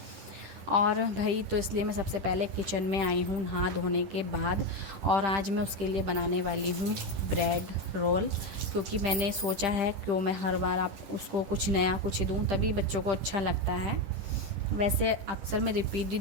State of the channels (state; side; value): late; left; 10 ms